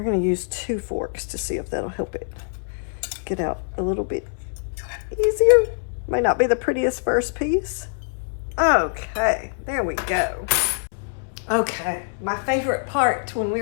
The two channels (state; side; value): silent; right; 63 dB below the other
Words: gonna use 2 forks to see if that'll help it get out a little bit easier. Might not be the prettiest first piece. Okay, there we go. Okay, my favorite part when